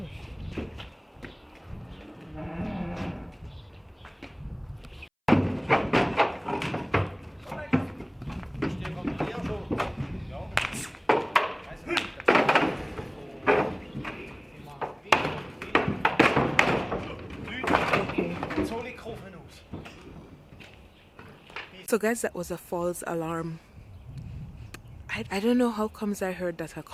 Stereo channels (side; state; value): both; identical; correlation 1.00